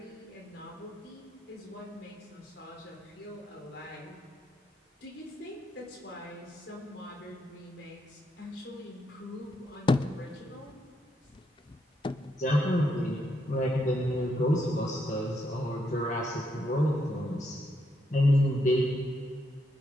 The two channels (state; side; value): normal; both; correlation 0.78